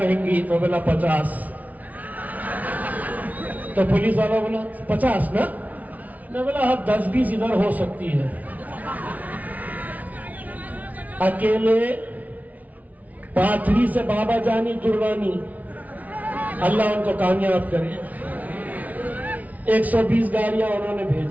तो बोला 50। तो पुलिस वाला बोला 50 ना, मैं बोला अब 10-20 इधर हो सकती है। अकेले पाथरी से बाबा जानी दुर्रानी, अल्लाह उनको कामयाब करे, 120 गाड़ियां उन्होंने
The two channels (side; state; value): left; late; 0.073 ms